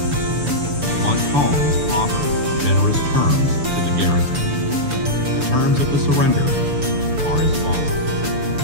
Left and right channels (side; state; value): left; late; 6.9 ms